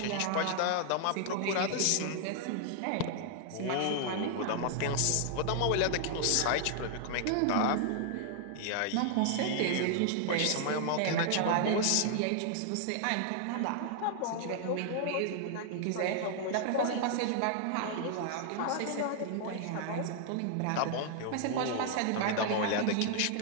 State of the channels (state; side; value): different; both; correlation 0.00